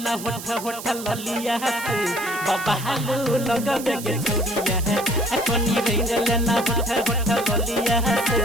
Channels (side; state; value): right; noise; hiss, 11 dB below the sound